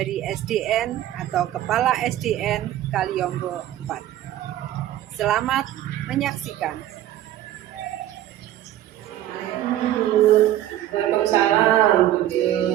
SDN atau Kepala SDN Kaliombo 4. Selamat menyaksikan. Waalaikumsalam, Bu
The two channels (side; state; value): left; quieter; 13.0 dB